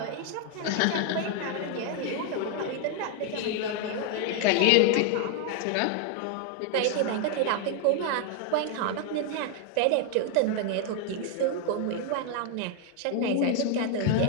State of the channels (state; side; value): different; both; correlation 0.00